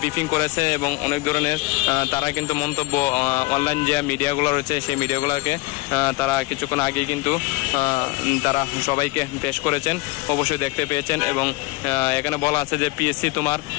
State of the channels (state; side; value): quieter; right; 22.8 dB